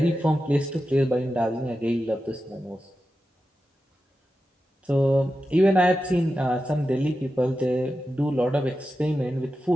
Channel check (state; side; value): normal; both; correlation 0.91